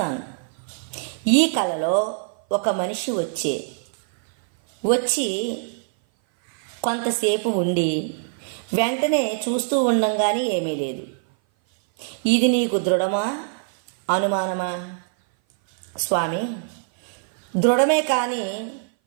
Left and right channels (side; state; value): left; silent; 57 dB below the other